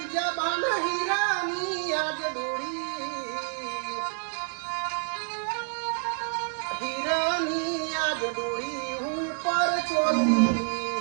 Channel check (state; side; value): silent; left; 58 dB below the other